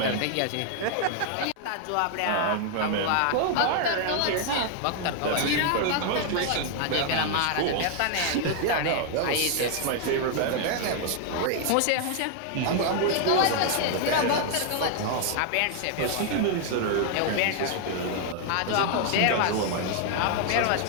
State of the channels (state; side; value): different; both; correlation 0.00